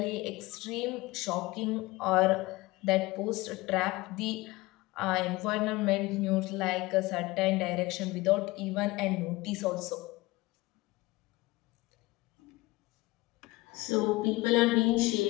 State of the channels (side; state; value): right; quieter; 20.8 dB